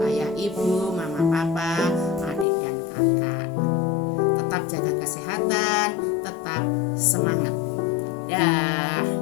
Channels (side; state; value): right; drops out; at 2.5 s